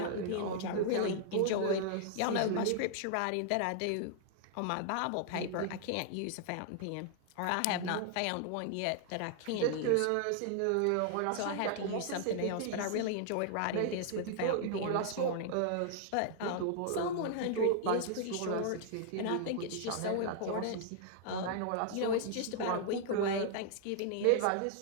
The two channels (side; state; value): both; different; correlation 0.00